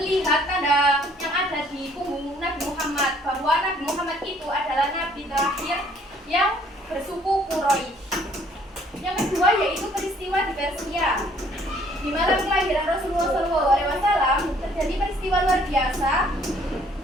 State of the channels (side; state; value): both; normal; correlation 0.61